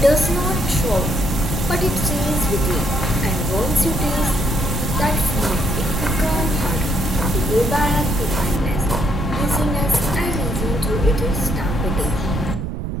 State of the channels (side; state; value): right; noise; rumble, 4 dB below the sound